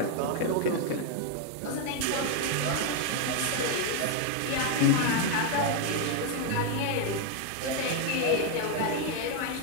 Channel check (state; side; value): different; both; correlation 0.01